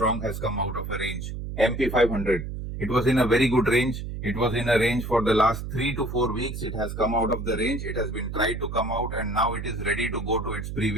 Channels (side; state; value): right; noise; hum, 6 dB below the sound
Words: has come out of a range. MP 500. It was in a very good range. It was in a range for the last 3 to 4 weeks. It has come out of the range. It has been tried to come out and now it is ready to go to its